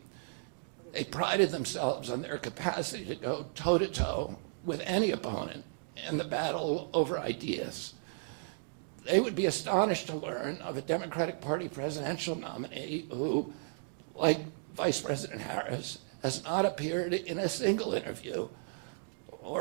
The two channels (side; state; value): left; silent; digital silence